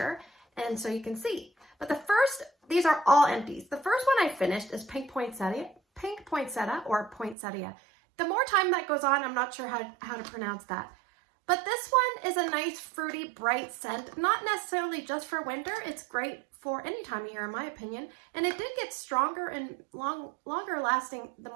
and so you can see. But the first, these are all empties. The first one I finished is Pink Poinsettia or Poinsettia. The more time that goes on, I'm not sure how to pronounce that. But this one is a nice, fruity, bright scent. Not necessarily just for winter. It's great for any time of year, in my opinion. And it did get stronger and longer lasting the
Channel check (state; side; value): drops out; left; at 7.4 s